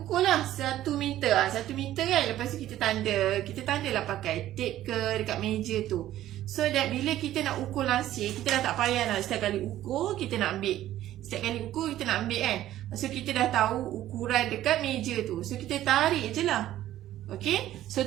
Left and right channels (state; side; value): quieter; left; 13.4 dB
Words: lah 1 meter. 1 meter kan, lepas tu kita tanda. Kita tanda lah pakai tape ke dekat meja tu. So that bila kita nak ukur langsir, kita dah tak payah lah setiap kali ukur kita nak ambil. Setiap kali ukur kita nak ambil kan. So kita dah tahu ukuran dekat meja tu. So kita tarik je lah. Okey, so